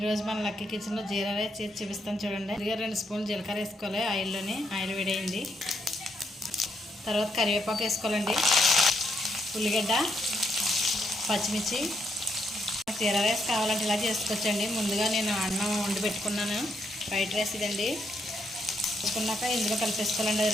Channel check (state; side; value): normal; both; correlation 0.77